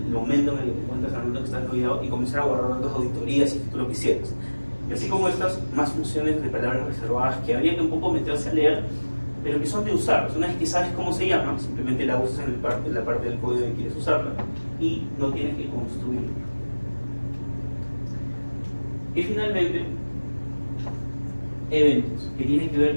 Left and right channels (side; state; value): both; inverted; correlation -1.00